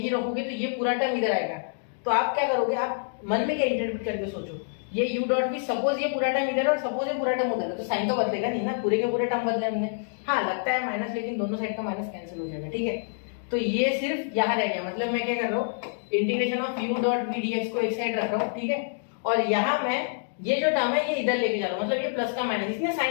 रखोगे तो ये पूरा टर्म इधर आएगा। तो आप क्या करोगे, आप मन में क्या इंटरप्रेट करके सोचो, ये u डॉट वी, सपोज ये पूरा टर्म इधर और सपोज ये पूरा टर्म उधर है, तो साइन तो बदलेगा नहीं ना, पूरे के पूरे टर्म बदले होंगे। हाँ लगता है माइनस, लेकिन दोनों साइड का माइनस कैंसिल हो जाएगा, ठीक है। तो ये सिर्फ यहाँ रह गया, मतलब मैं क्या कर रहा हूँ, integration of u dot v d x को एक साइड रख रहा हूँ, ठीक है। और यहाँ मैं ये जो टर्म है ये इधर लेके जा रहा हूँ, मतलब ये प्लस का माइनस, इसने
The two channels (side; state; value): right; silent; digital silence